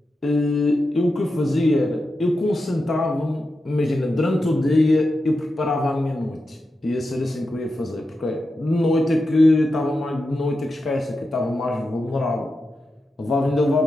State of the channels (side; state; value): both; normal; correlation 0.89